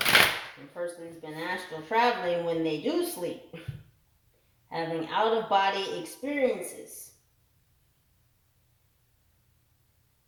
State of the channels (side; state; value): both; identical; correlation 1.00